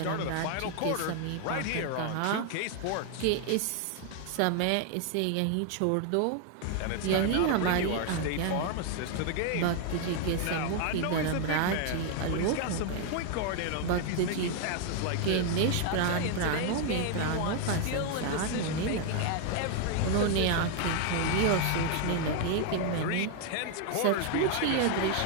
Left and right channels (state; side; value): different; both; correlation 0.00